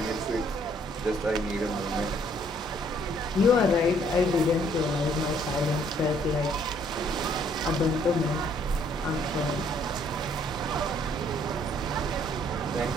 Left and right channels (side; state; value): both; normal; correlation 0.64